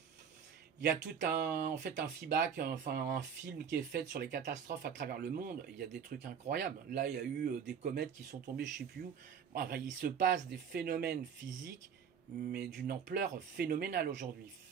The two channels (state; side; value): quieter; left; 7.3 dB